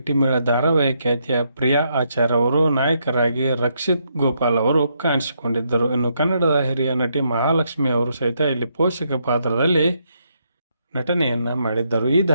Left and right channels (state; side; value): inverted; both; correlation -0.77